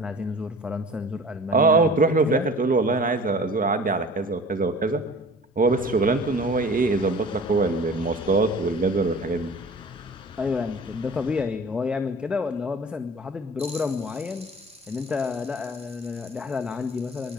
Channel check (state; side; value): normal; both; correlation 0.44